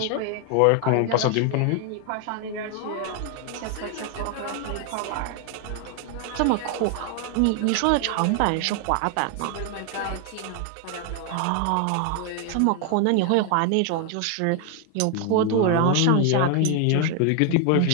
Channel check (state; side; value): different; both; correlation 0.00